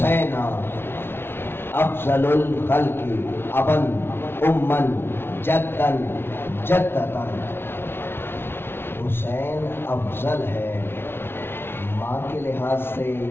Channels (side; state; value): right; late; 0.11 ms